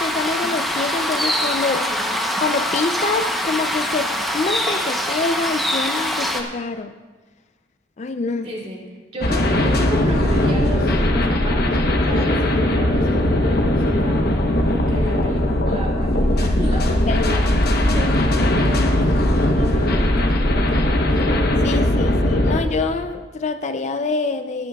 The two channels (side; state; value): both; normal; correlation 0.67